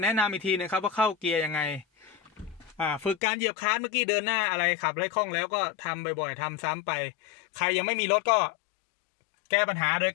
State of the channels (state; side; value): drops out; right; at 3.2 s